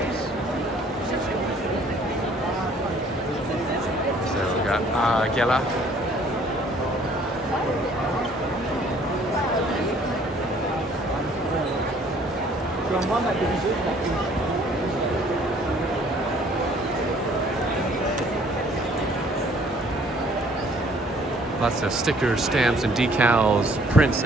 So we got Gela. Lots of stickers, stamps, and decals, prints,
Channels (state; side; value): normal; both; correlation 0.58